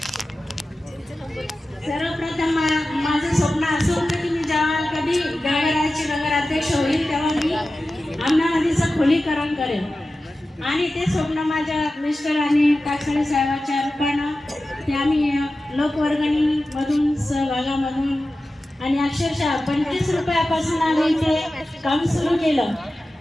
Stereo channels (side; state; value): both; normal; correlation 0.94